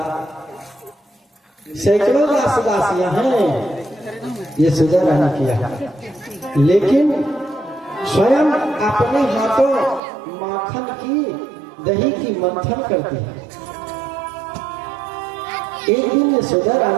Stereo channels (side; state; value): left; drops out; at 10.0 s